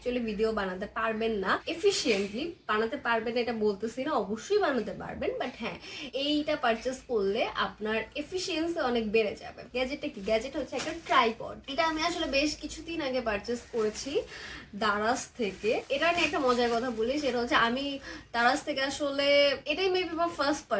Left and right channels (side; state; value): both; identical; correlation 1.00